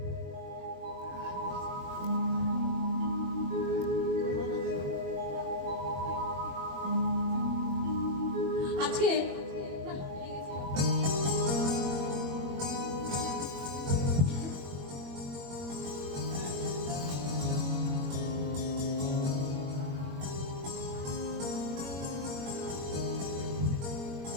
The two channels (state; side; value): late; left; 21 ms